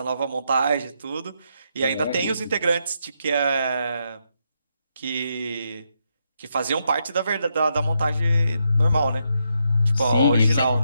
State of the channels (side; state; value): both; inverted; correlation -0.80